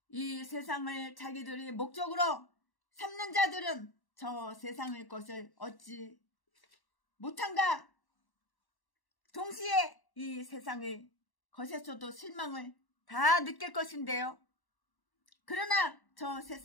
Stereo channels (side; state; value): right; late; 1.1 ms